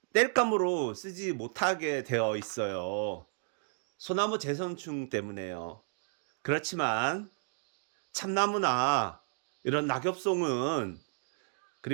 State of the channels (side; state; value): left; silent; digital silence